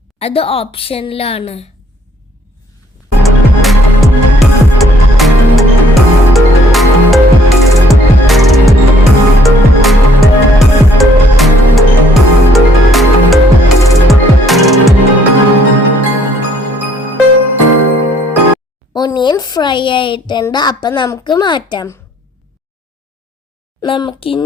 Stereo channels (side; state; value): both; normal; correlation 0.63